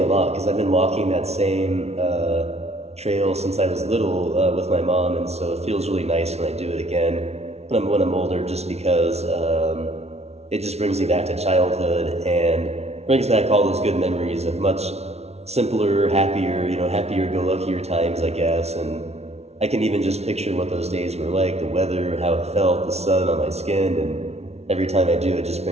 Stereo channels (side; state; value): left; late; 0.31 ms